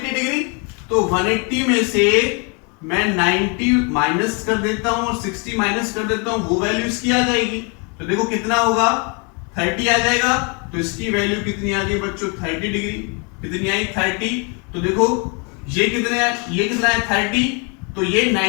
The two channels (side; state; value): right; quieter; 34.2 dB